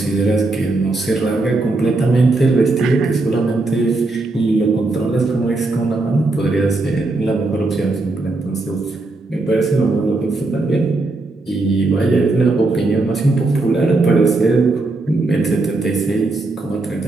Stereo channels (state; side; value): quieter; left; 3.2 dB